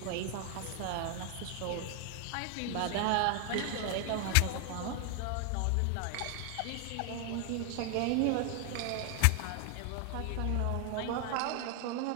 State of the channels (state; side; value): different; both; correlation 0.00